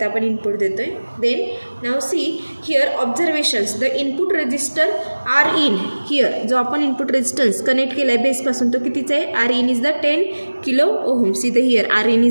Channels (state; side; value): inverted; both; correlation -1.00